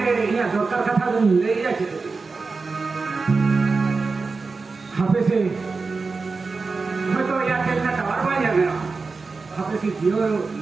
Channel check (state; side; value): quieter; left; 4.2 dB